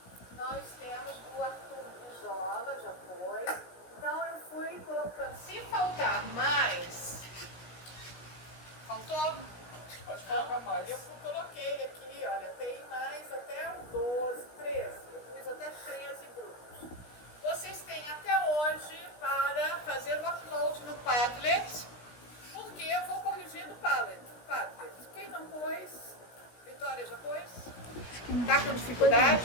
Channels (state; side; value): late; right; 17 ms